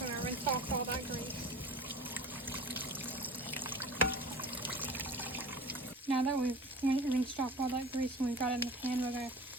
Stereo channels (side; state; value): both; normal; correlation 0.38